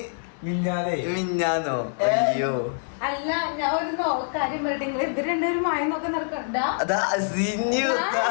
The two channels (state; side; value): silent; right; 62 dB below the other